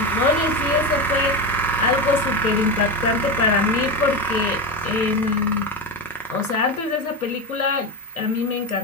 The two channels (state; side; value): normal; both; correlation 0.17